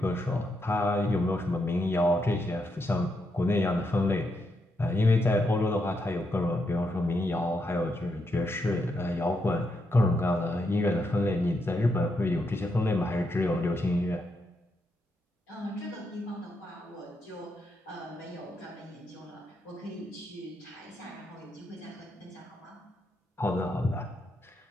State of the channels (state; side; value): normal; both; correlation 0.81